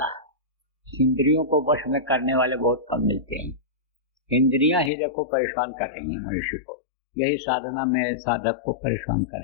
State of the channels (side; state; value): right; drops out; at 4.9 s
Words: इंद्रियों को वश में करने वाले बहुत कम मिलते हैं। इंद्रियां ही देखो परेशान कर रही हैं मनुष्य को, यही साधना में साधक को परेशान कर